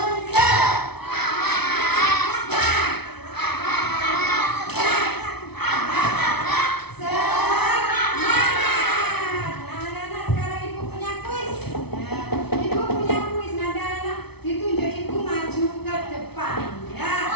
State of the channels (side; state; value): right; late; 0.98 ms